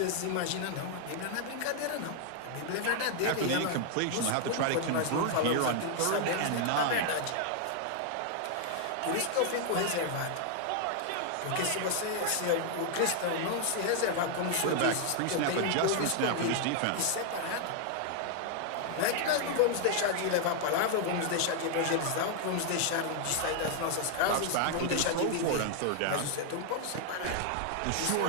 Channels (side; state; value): both; different; correlation 0.00